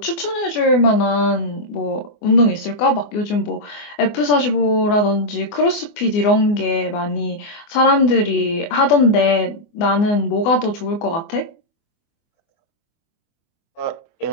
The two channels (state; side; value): late; right; 24 ms